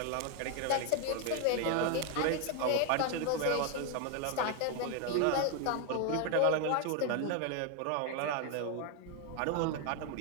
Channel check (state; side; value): different; both; correlation 0.01